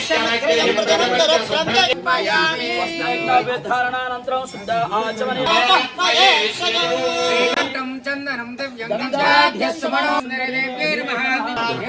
ధారణానంతరం శుద్ధ ఆచమని చందనం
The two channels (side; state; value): both; identical; correlation 1.00